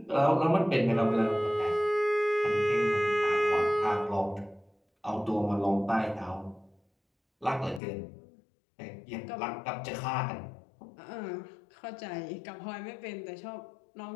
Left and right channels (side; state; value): right; drops out; at 7.8 s